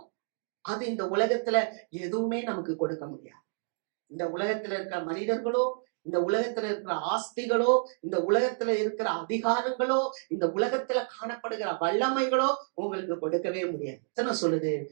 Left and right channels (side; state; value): left; silent; digital silence